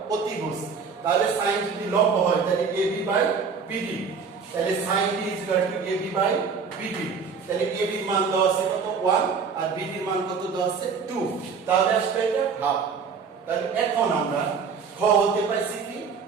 অতিভুজ। তাহলে sin যদি লম্ব হয় তাহলে ab বাই bd, তাহলে sin d is equal to ab by bd। তাহলে ab এর মান দেওয়া আছে কত? 1 আর bd এর মান কত দেওয়া আছে? 2। তাহলে আসবে এটা হাফ। তাহলে এখন আমরা খ হতে পাইছি কি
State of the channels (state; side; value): quieter; left; 5.7 dB